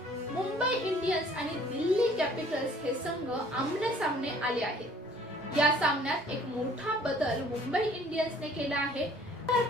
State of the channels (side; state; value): both; normal; correlation 0.56